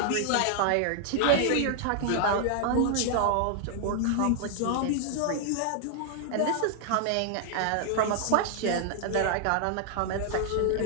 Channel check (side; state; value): both; different; correlation 0.00